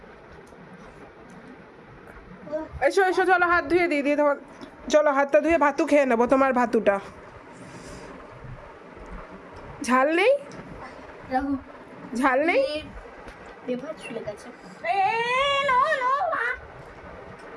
এসো এসো, চলো হাত ধুয়ে দিই দিয়ে তোমার, চলো হাতটা ধুয়ে ভাতু খেয়ে নেবো তোমার ভাতুটা। ঝাল নেই? ঝাল নেই?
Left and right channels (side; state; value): both; identical; correlation 1.00